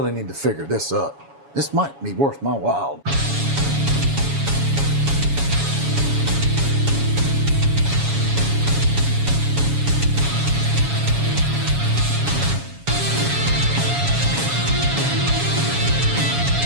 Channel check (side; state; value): left; late; 7.2 ms